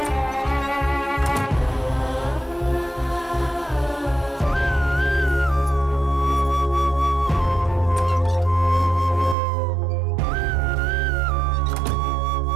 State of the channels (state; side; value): drops out; left; at 9.3 s